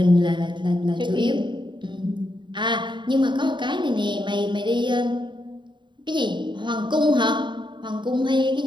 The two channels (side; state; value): left; late; 0.23 ms